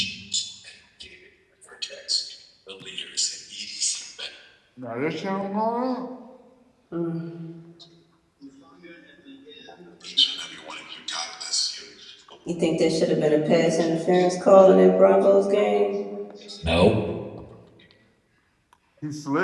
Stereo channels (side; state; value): both; identical; correlation 1.00